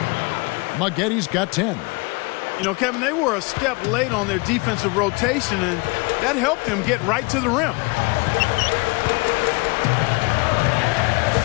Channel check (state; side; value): quieter; right; 27.6 dB